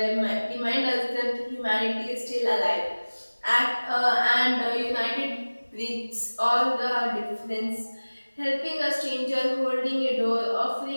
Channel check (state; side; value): inverted; both; correlation -1.00